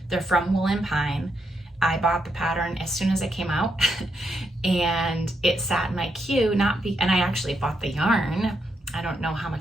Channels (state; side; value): normal; both; correlation 0.81